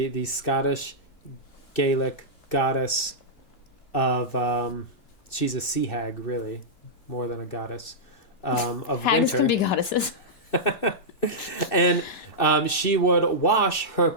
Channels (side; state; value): right; late; 2.6 ms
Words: Scottish Gaelic goddess of, she's a sea hag, really, more than a goddess, of Hags winter. can be goddesses. And she would wash her